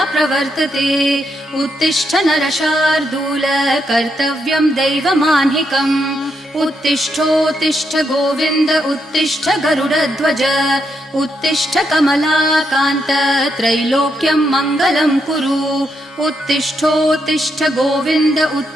प्रवर्तते उत्तिष्ठ नरशार्दूल कर्तव्यं दैवमान्हिकम् उत्तिष्ठोत्तिष्ठ गोविन्द उत्तिष्ठ गरुडध्वज उत्तिष्ठ कमलाकान्त त्रैलोक्यं मङ्गलं कुरु उत्तिष्ठोत्तिष्ठ गोविन्द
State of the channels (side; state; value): both; normal; correlation 0.80